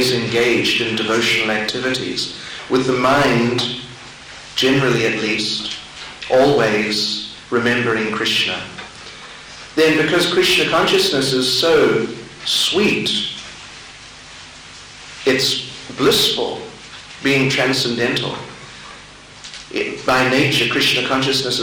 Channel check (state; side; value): identical; both; correlation 1.00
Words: engaged in devotional activities, with the mind, generally at least, always remembering Krishna, then because Krishna consciousness is so sweet, it's blissful, being transcendental. By nature, Krishna consciousness